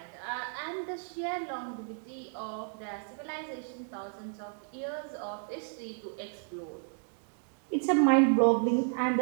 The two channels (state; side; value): silent; left; 56 dB below the other